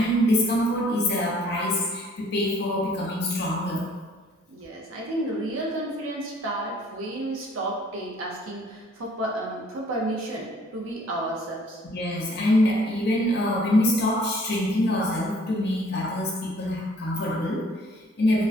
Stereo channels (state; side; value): normal; both; correlation 0.58